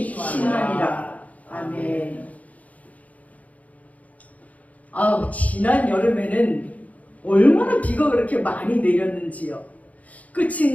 심하니라. 아멘. 지난 여름에는 얼마나 비가 그렇게 많이 내렸는지요.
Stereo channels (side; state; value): right; late; 0.071 ms